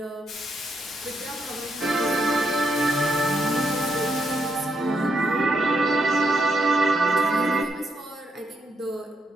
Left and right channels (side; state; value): both; normal; correlation 0.78